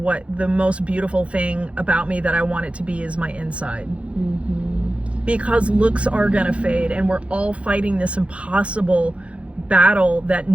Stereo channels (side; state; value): left; late; 0.061 ms